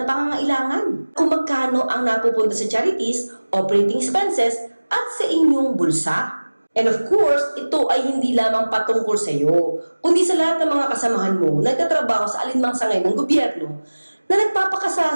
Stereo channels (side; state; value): both; inverted; correlation -1.00